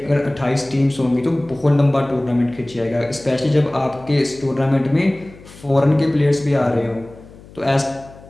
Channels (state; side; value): noise; left; hum, 21 dB below the sound